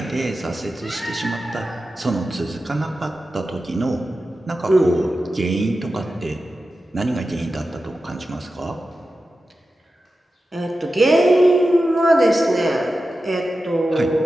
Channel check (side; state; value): both; normal; correlation 0.92